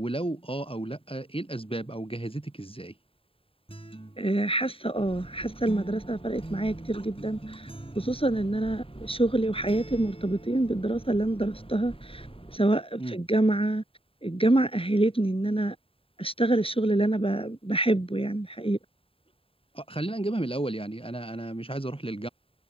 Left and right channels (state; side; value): late; right; 0.27 ms